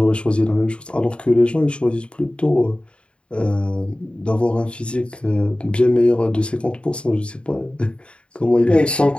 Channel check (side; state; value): right; late; 0.056 ms